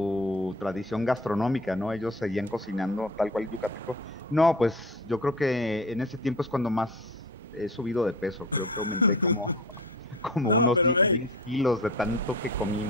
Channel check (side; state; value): both; normal; correlation 0.34